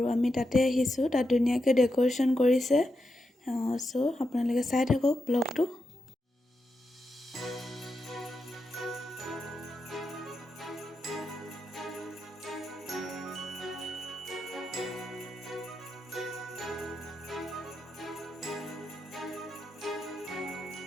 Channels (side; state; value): both; normal; correlation 0.86